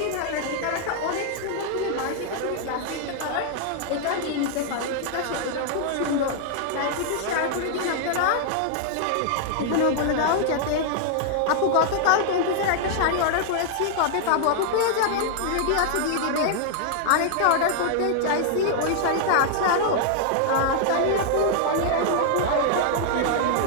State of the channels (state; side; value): different; both; correlation -0.01